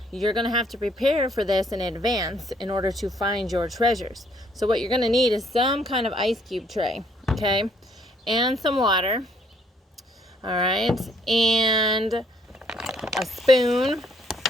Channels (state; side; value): normal; both; correlation 0.66